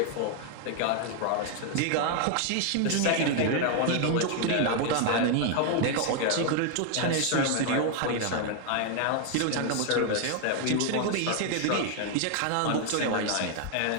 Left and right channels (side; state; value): both; different; correlation 0.00